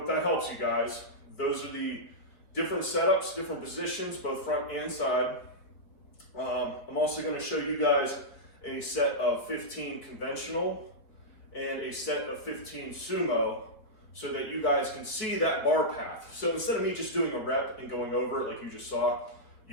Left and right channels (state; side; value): late; right; 4.8 ms